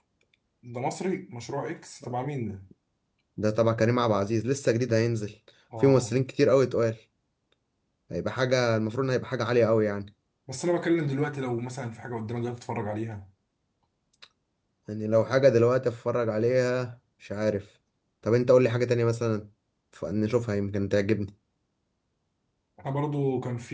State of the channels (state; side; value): identical; both; correlation 1.00